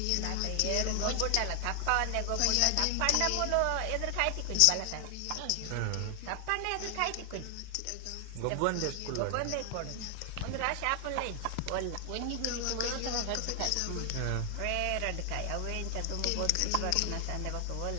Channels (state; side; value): different; both; correlation 0.00